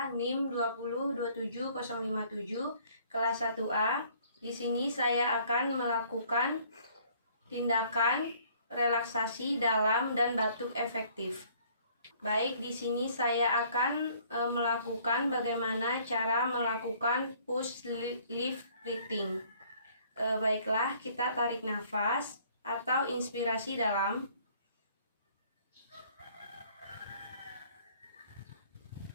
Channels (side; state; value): both; inverted; correlation -0.59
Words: NIM 2027057, kelas 1A. Di sini saya akan melakukan tindakan relaksasi dalam dan batuk efektif. Baik, di sini saya akan melakukan bagaimana cara melakukan push lift breathing. Baiklah, kita tarik nafas atau inspirasi dalam.